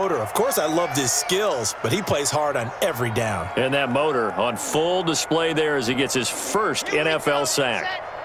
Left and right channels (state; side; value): identical; both; correlation 1.00